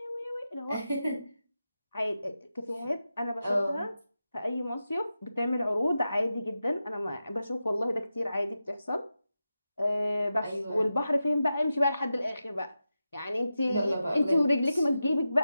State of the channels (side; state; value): both; inverted; correlation -0.91